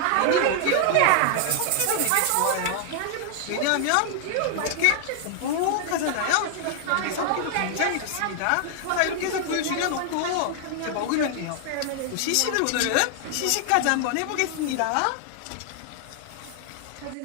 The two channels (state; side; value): different; both; correlation 0.00